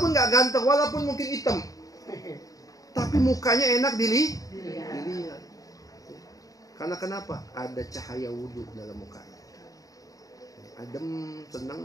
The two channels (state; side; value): late; right; 0.17 ms